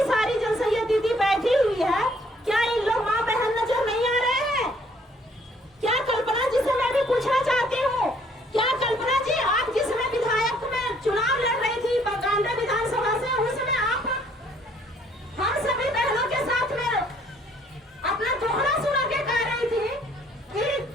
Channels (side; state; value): both; normal; correlation 0.63